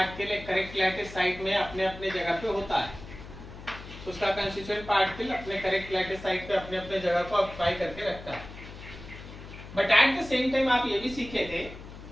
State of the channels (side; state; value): left; noise; hum, 14 dB below the sound